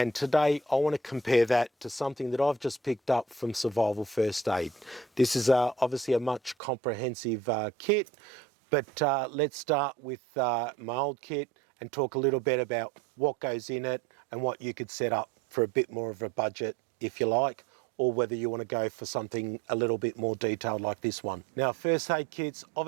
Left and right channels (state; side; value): drops out; left; at 6.6 s